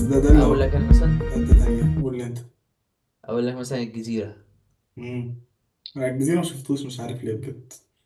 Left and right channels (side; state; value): both; identical; correlation 1.00